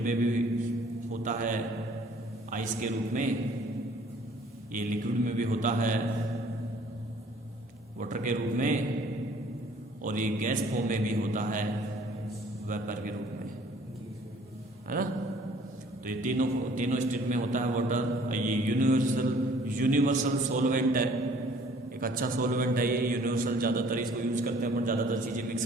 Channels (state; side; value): normal; both; correlation 0.55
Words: में भी होता है आइस के रूप में, ये लिक्विड में भी होता है वाटर के रूप में, और ये गैस फॉर्म में भी होता है वेपर के रूप में, है ना। तो ये तीनों स्टेट में होता है वाटर। ये यूनिवर्सल सॉल्वेंट है, एक अच्छा सॉल्वेंट है ये, यूनिवर्सल, ज्यादातर इसको यूज करते हैं, पर ज्यादातर चीजें मिक्स